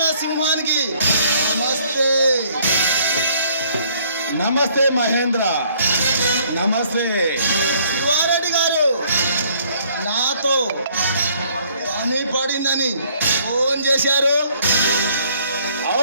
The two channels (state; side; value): inverted; both; correlation -0.62